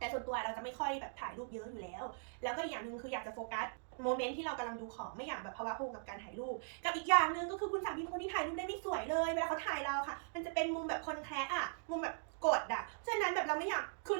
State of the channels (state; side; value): silent; left; digital silence